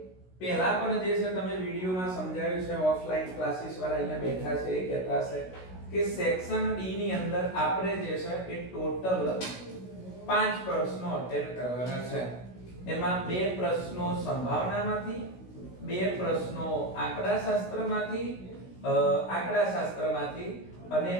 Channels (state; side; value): late; right; 16 ms